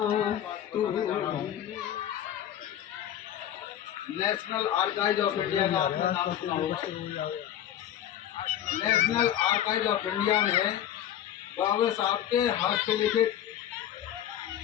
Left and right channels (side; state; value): right; quieter; 11.1 dB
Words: नेशनल आर्काइव ऑफ इंडिया का आपने नाम सुना होगा। नेशनल आर्काइव ऑफ इंडिया में बाबा साहब के हाथ से लिखित